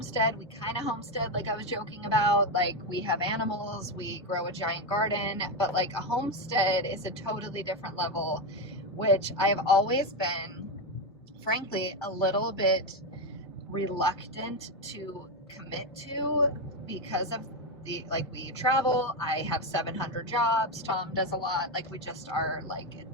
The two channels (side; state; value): both; normal; correlation 0.09